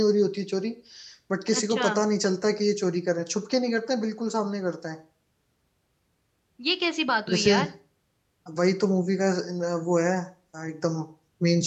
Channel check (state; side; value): identical; both; correlation 1.00